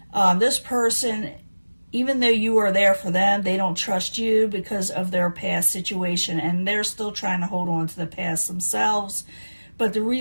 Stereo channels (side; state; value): both; inverted; correlation -1.00